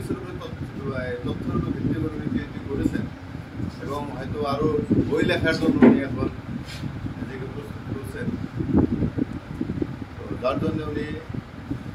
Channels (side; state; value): both; identical; correlation 1.00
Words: উপরে তথ্যের উপর ভিত্তি করে উনি পিএইচডি করেছেন এবং হয়তো আরও বই লেখার জন্য উনি এখন নিজেকে প্রস্তুত করছেন। তো যার জন্য উনি